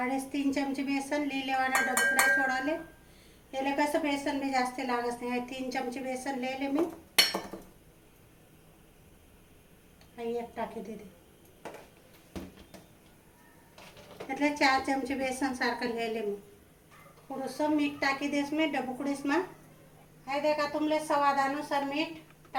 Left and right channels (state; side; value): identical; both; correlation 1.00